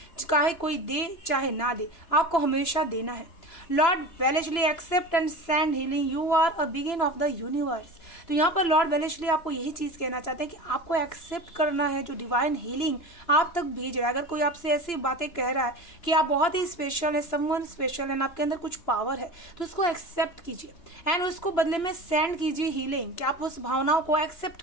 चाहे कोई दे चाहे ना दे, आपको हमेशा देना है। Lord Wellesley accept and send healing, you are a begin of the universe. तो यहाँ पर लॉर्ड वेलेस्ली आपको यही चीज़ कहना चाहते हैं कि आपको एक्सेप्ट करना है जो डिवाइन हीलिंग आप तक भेज रहा है। अगर कोई आपसे ऐसी बातें कह रहा है कि आप बहुत ही स्पेशल है, समवन स्पेशल है, आपके अंदर कुछ पावर है, तो उसको एक्सेप्ट कीजिए एंड उसको बदले में सेंड कीजिए हीलिंग, कि आप उस भावनाओं को एक्सेप्ट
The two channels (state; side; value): late; right; 2.9 ms